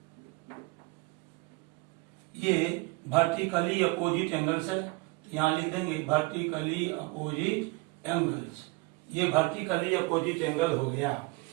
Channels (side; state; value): left; quieter; 24.6 dB